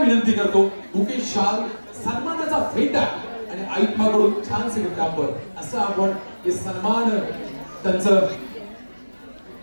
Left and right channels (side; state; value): both; inverted; correlation -1.00